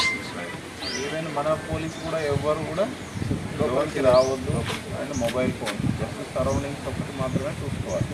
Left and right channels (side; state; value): both; identical; correlation 1.00